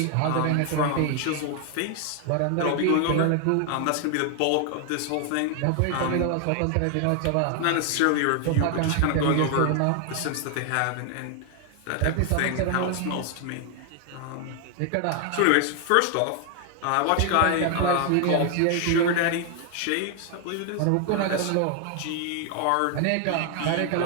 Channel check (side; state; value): both; different; correlation 0.00